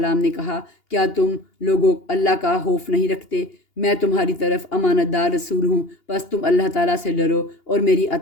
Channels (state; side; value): late; right; 2.8 ms